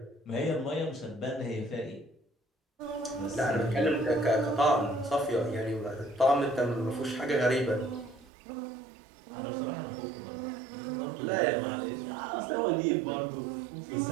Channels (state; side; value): drops out; left; at 8.3 s